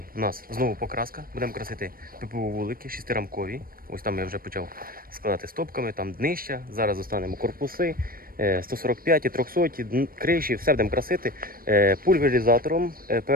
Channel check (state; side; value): late; left; 0.42 ms